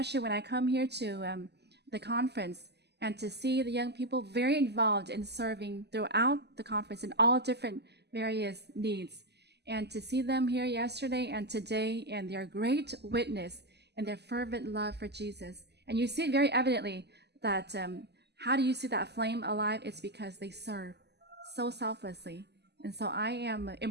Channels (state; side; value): late; left; 0.49 ms